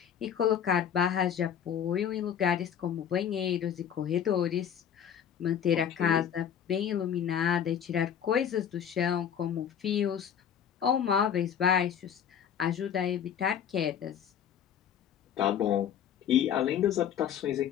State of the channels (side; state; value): right; quieter; 8.8 dB